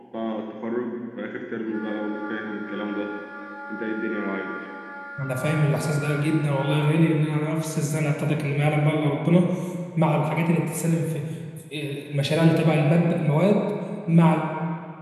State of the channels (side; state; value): both; identical; correlation 1.00